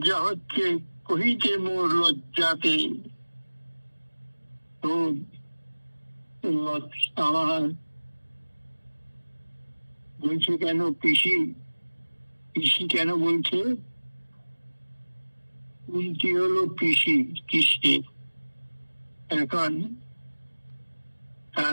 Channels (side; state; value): both; inverted; correlation -1.00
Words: হচ্ছে, কহিতে মোর লজ্জাতে, তো আমার বলছে কেন পিসি, পিসি কেন বলছে? কুন্তি হলো পিসি কৃষ্ণের, এখন